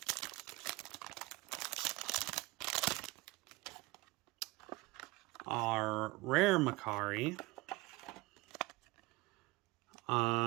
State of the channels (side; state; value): left; quieter; 22.3 dB